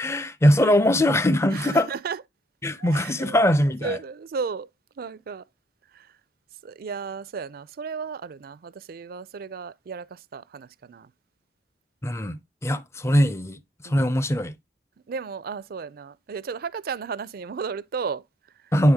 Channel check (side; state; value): both; normal; correlation 0.73